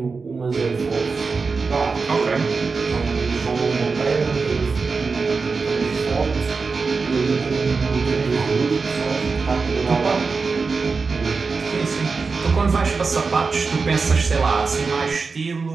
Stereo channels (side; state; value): left; quieter; 4.6 dB